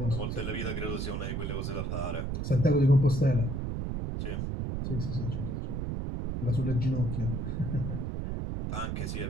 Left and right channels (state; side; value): noise; right; rumble, 2 dB below the sound